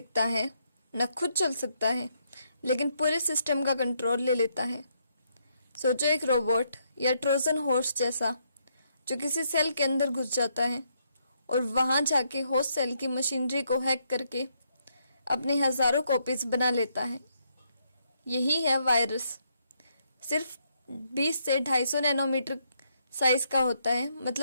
है, न खुद चल सकता है, लेकिन पूरे सिस्टम का कंट्रोल ले लेता है। सोचो एक रोबोट या ट्रोजन हॉर्स जैसा जो किसी सेल के अंदर घुस जाता है और वहां जाके होस्ट सेल की मशीनरी को हैक करके अपने हजारों कॉपीज बना लेता है। यही है वायरस। सिर्फ 20 से 250 नैनोमीटर साइज का होता है,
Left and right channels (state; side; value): inverted; both; correlation -0.76